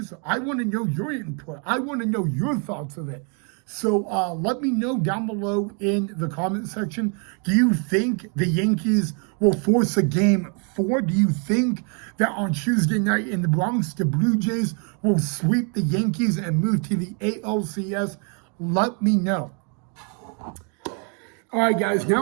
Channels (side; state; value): left; quieter; 38.7 dB